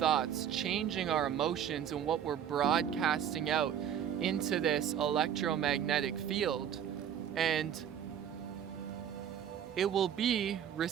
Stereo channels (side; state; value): left; quieter; 9.2 dB